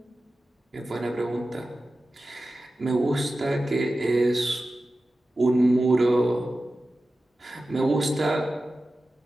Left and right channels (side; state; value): both; normal; correlation 0.94